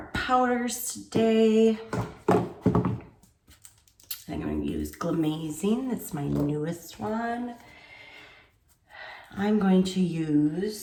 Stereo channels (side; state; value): both; identical; correlation 1.00